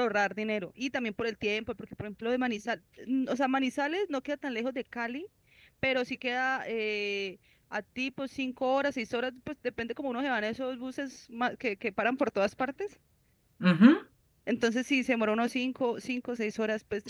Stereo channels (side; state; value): both; identical; correlation 1.00